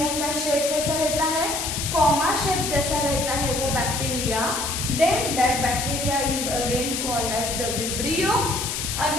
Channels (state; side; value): noise; left; hiss, 3 dB below the sound